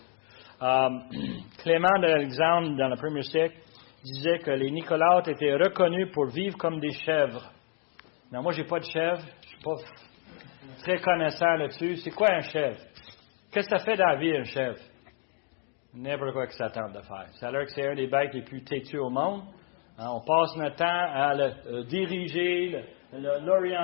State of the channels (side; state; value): right; quieter; 36.8 dB